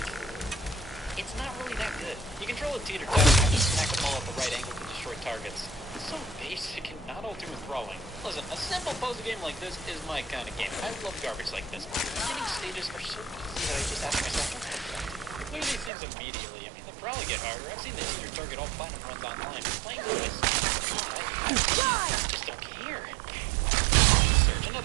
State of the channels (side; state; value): left; drops out; at 15.9 s